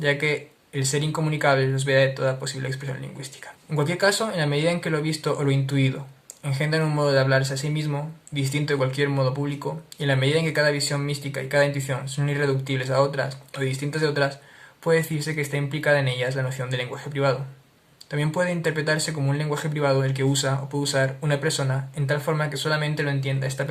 que el ser incomunicable los veda de toda posible expresión lingüística. En cualquier caso, en la medida en que lo visto o lo intuido engendran un modo de hablarse a sí mismo, distinto de cualquier modo público, y en la medida en que cada visión mística y cada intuición son irreductibles a otras o distintas de otras, puede decirse que está implicada en ellas la noción de lenguaje privado. También puede interpretarse como un lenguaje privado el que usa o puede usar una persona en tal forma que solamente lo entienda esta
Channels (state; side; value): identical; both; correlation 1.00